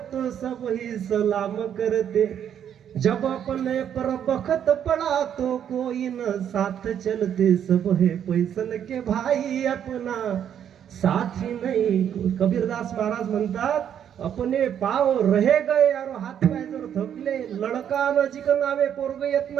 तो सब ही सलाम करते, जब अपने पर बखत पड़ा तो कोई न साथ चलते, सब है पैसन के भाई अपना साथी नहीं। कबीरदास महाराज म्हणतात, अपने पाव रहे गए यारो, हात पाय जर थकले, लडका नजीक नावे, पोरग येत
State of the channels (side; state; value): left; quieter; 9.2 dB